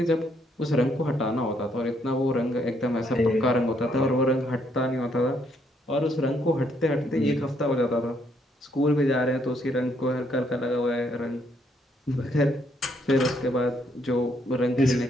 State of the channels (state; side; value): normal; both; correlation 0.71